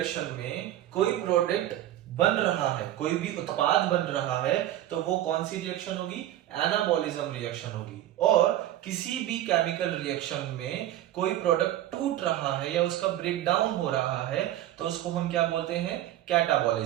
में कोई प्रोडक्ट बन रहा है, कोई भी उत्पाद बन रहा है, तो वो कौन सी रिएक्शन होगी? एनाबॉलिज्म रिएक्शन होगी। और किसी भी केमिकल रिएक्शन में कोई प्रोडक्ट टूट रहा है या उसका ब्रेक डाउन हो रहा है, तो उसको हम क्या बोलते हैं?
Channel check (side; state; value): left; quieter; 13.3 dB